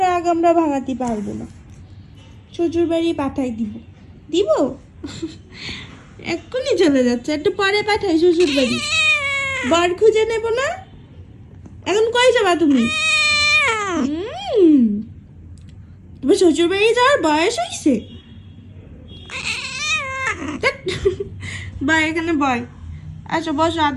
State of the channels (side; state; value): both; identical; correlation 1.00